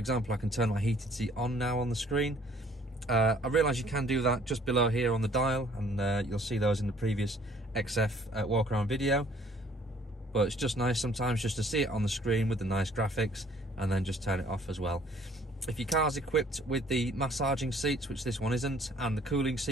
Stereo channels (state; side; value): normal; both; correlation 0.58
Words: I can turn my heated seat on now on the screen. I realise you can do that just below here on the dial, and you'll see those in the previous XF walk around video. But it's just nice sometimes just to see it on the screen with the nice graphics and then just turn it off as well. If your car's equipped with the massaging seats, which this one isn't, and the cooling